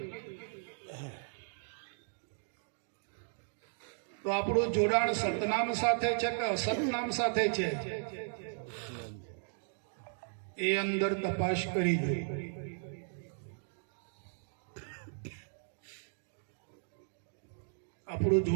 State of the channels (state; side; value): silent; left; digital silence